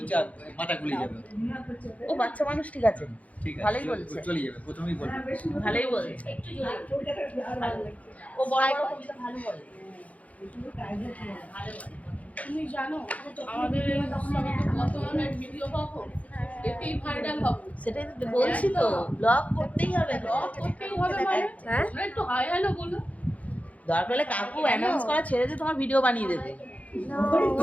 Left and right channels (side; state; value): right; late; 0.069 ms